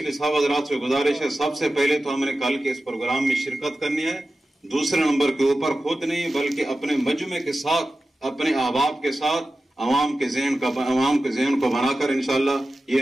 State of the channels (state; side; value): normal; both; correlation 0.94